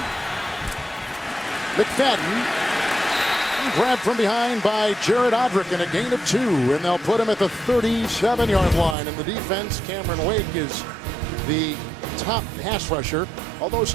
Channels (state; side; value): drops out; left; at 9.0 s